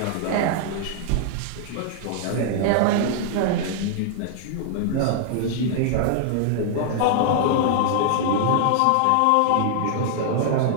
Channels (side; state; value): both; different; correlation -0.01